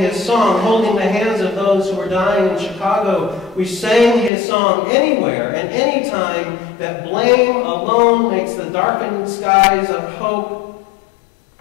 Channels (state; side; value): drops out; right; at 4.3 s